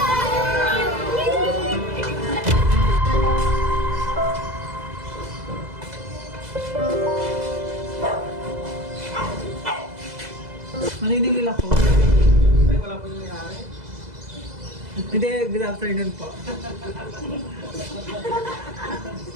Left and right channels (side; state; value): left; late; 2.0 ms